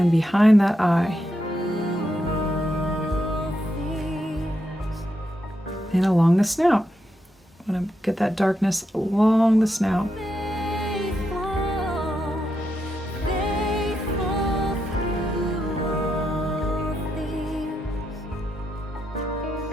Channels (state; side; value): normal; both; correlation 0.83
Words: behind that eye. through all things. and along the snout. I want to get that darkness along the snout.